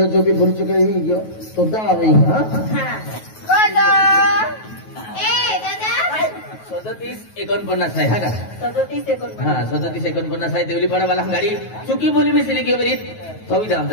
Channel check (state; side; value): late; right; 9.3 ms